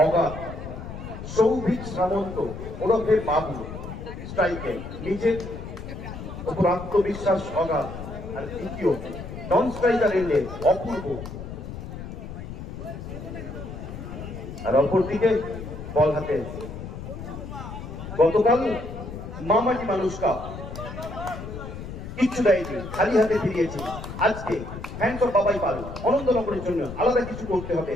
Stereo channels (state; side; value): noise; left; rumble, 9 dB below the sound